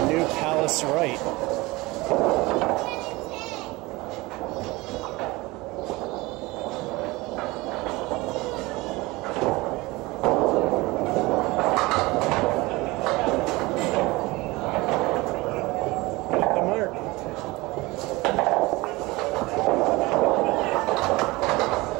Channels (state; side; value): quieter; left; 21.9 dB